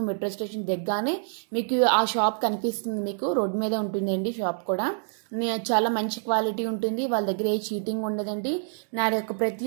మెట్రో స్టేషన్ దగ్గరనే మీకు ఆ షాప్ కనిపిస్తుంది, మీకు రోడ్డు మీద ఉంటుందండి షాప్ కూడా. చాలా మంచి క్వాలిటీ ఉంటుంది, వాళ్ళ దగ్గర ఏ చీటింగ్ ఉండదండి. నా యొక్క ప్రతి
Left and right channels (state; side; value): silent; left; digital silence